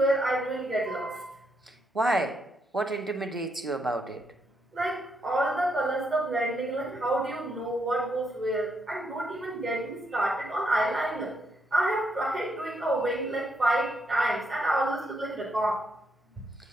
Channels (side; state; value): both; normal; correlation 0.77